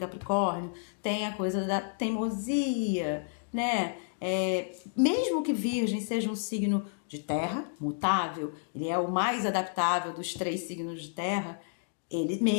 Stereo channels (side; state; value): right; silent; digital silence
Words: tem a coisa da teimosia, né? Mesmo que Virgem seja um signo de terra, mutável, ele é o mais adaptável dos 3 signos de terra, ele